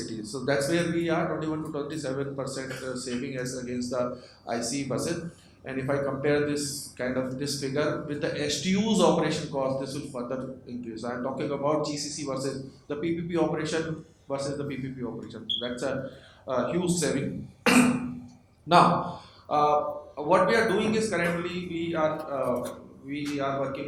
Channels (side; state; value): both; identical; correlation 1.00